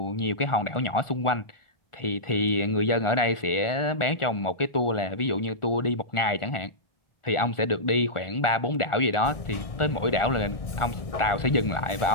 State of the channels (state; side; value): late; right; 1.6 ms